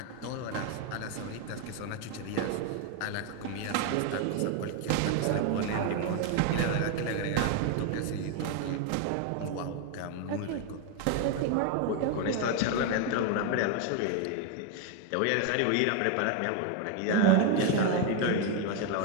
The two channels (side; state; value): both; different; correlation 0.01